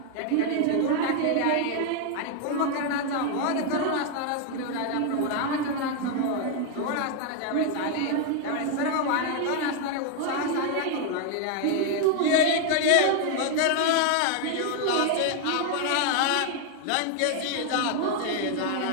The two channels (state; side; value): different; both; correlation 0.00